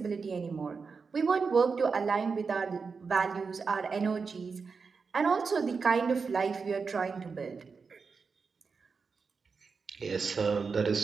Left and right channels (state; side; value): quieter; left; 5.0 dB